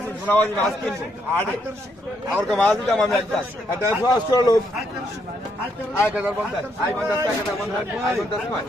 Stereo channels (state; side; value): normal; both; correlation 0.75